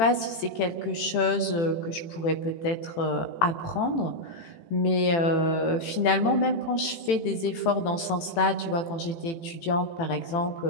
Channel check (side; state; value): right; late; 18 ms